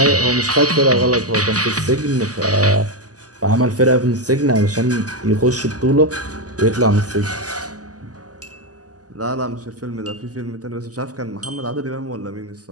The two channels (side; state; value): left; late; 0.67 ms